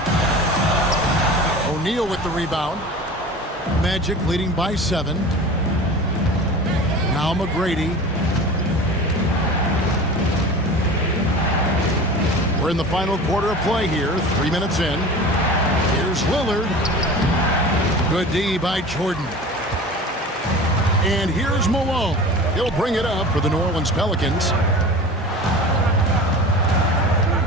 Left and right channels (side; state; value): both; normal; correlation 0.36